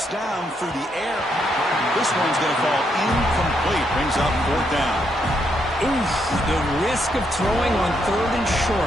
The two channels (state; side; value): normal; both; correlation 0.77